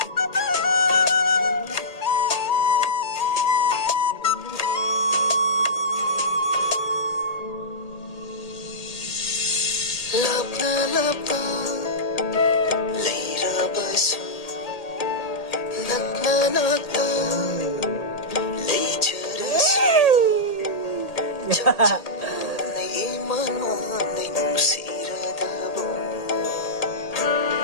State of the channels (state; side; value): late; right; 1.8 ms